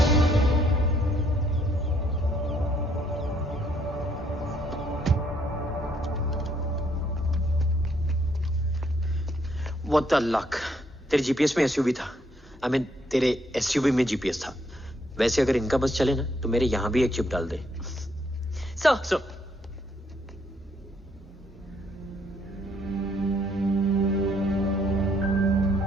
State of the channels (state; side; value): normal; both; correlation 0.70